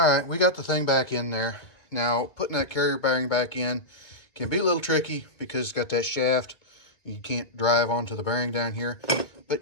right, we got the thing back in there. Now, putting that carrier bearing back in can be a little tricky because it's got that shaft. You can't drive onto the bearing down here.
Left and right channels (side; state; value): right; late; 1.9 ms